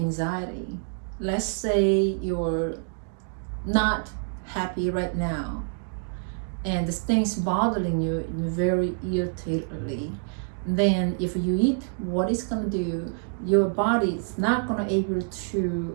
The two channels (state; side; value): silent; left; 60 dB below the other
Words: let's say you're not happy right now, and the things bothering you very irritatedly, then if you eat, what it's going to do, your body is not going to able to